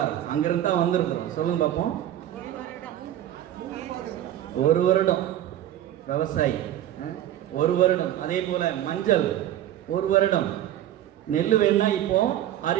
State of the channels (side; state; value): left; quieter; 12.2 dB